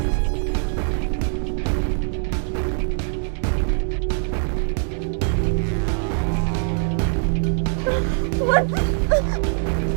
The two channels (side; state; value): left; silent; digital silence